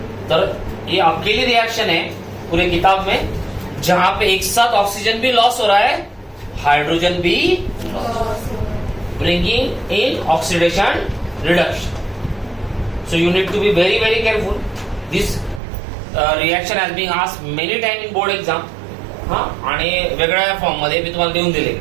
तर ये अकेली रिएक्शन है पूरे किताब में जहां पे एक साथ ऑक्सीजन भी लॉस हो रहा है, हाइड्रोजन भी bringing in oxidation reduction. So you need to be very very careful. This reaction has been asked many time in board exam. हा, आणि वेगळ्या फॉर्म मध्ये मी तुम्हाला देऊन दिले.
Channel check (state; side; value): drops out; left; at 15.6 s